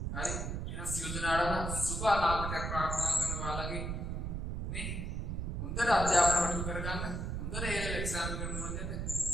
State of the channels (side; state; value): right; noise; rumble, 2 dB below the sound